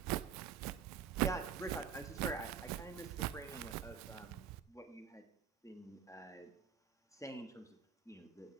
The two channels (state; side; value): quieter; left; 7.6 dB